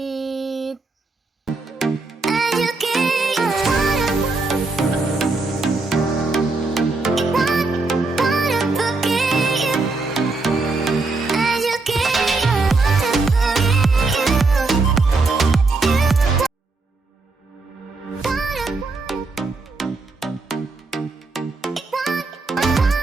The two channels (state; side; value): quieter; left; 3.6 dB